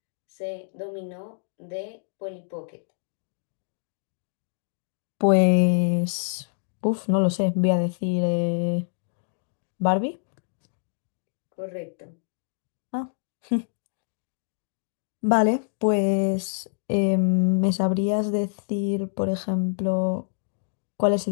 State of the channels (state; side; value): silent; right; digital silence